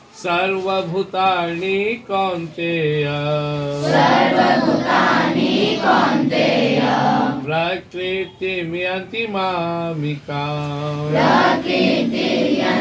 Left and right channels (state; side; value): identical; both; correlation 1.00